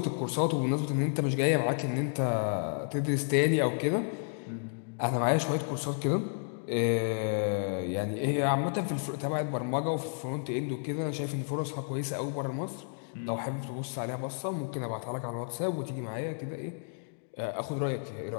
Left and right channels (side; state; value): right; silent; digital silence